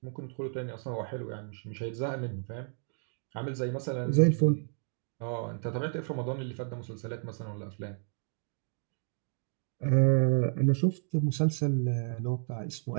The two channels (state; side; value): silent; left; 57 dB below the other